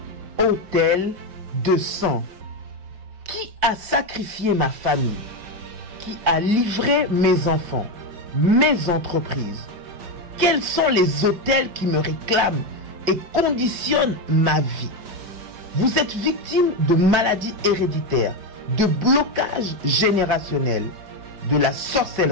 Autel de sang. Qui a sacrifié ma famille? Qui a livré mes enfants, mes entreprises? Quels sont les autels qui me réclament et conditionnent ma vie? Vous êtes victime de maladies héréditaires, de blocages générationnels, de la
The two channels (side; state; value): left; late; 4.8 ms